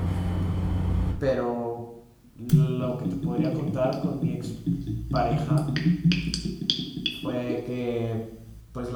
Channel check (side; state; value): both; identical; correlation 1.00